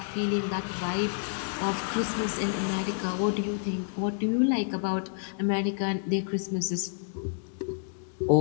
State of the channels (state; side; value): silent; right; digital silence